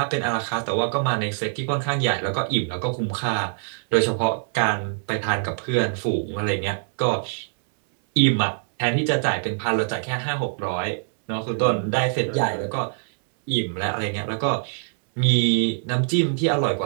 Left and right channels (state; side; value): silent; left; 63 dB below the other